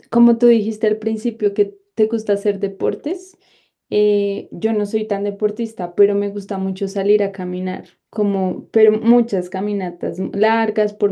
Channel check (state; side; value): identical; both; correlation 1.00